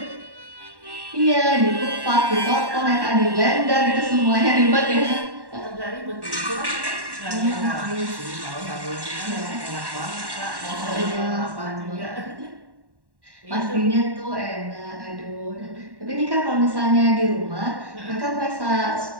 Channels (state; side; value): late; left; 1.1 ms